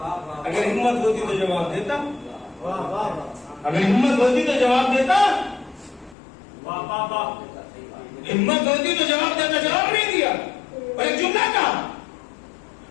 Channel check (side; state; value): right; drops out; at 6.2 s